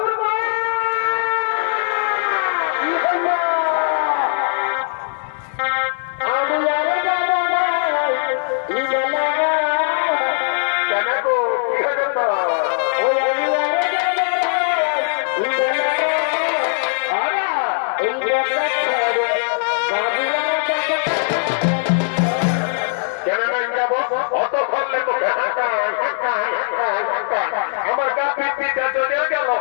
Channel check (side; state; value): right; silent; digital silence